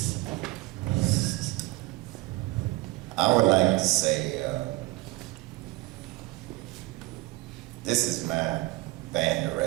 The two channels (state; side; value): quieter; left; 20.3 dB